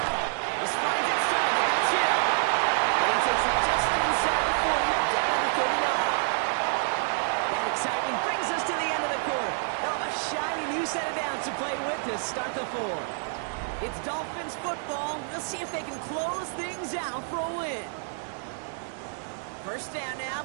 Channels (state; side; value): silent; left; 59 dB below the other